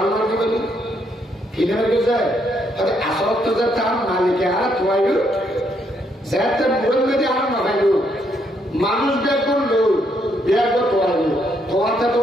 মার্কে বলি ফিরে যায় আসল তো যে তার মালিকে আর তোয়াইল যাতে মূল মেয়েদের আর না খাইল মানুষ ব্যাগ করলো ব্যাগ তোয়াইল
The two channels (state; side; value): normal; both; correlation 0.74